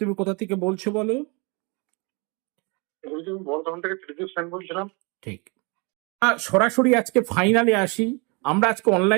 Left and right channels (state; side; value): quieter; left; 30.3 dB